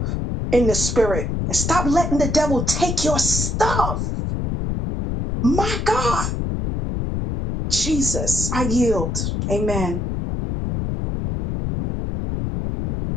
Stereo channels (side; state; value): left; noise; rumble, 2 dB below the sound